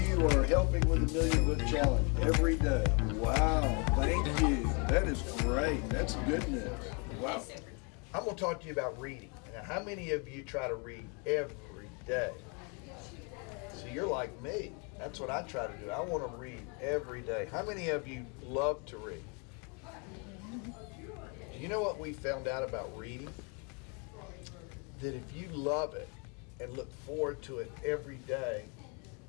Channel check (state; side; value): quieter; right; 34.3 dB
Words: are helping with the Million Book Challenge every day? Wow, thank you. That is great. That's good news. Wow. I'm going to talk to you about reading. Now, how many of you try to read every day? So you're like me. That's what I try to do. I want to read every day. How many of you love to read? Do you know what we found out about reading? That if you love it, and look forward to it every day,